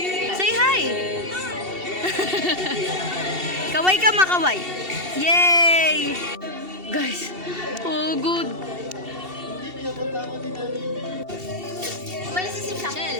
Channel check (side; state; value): left; late; 2.7 ms